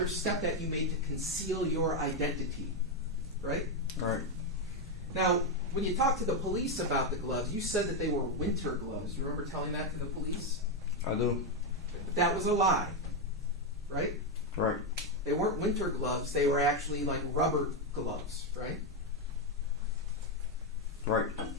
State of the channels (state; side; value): normal; both; correlation 0.05